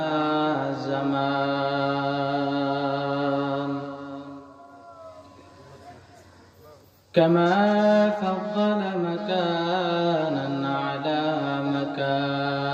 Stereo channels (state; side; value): identical; both; correlation 1.00